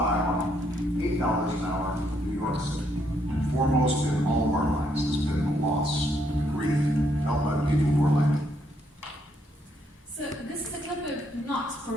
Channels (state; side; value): normal; both; correlation 0.74